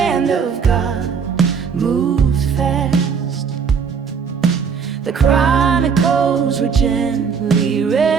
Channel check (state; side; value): quieter; left; 6.3 dB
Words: of God moved fast. The chronicles were gently